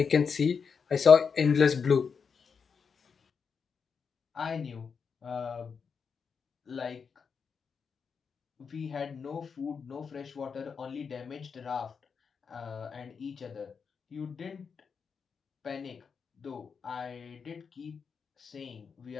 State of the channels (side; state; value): right; quieter; 5.9 dB